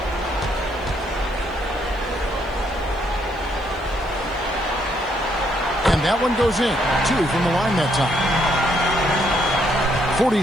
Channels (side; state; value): right; noise; hiss, 30 dB below the sound